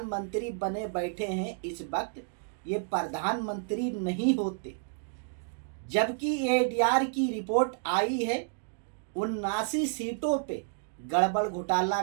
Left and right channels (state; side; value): silent; left; digital silence